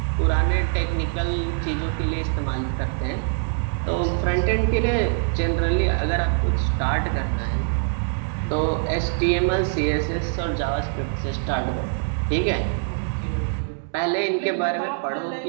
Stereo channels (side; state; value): left; silent; digital silence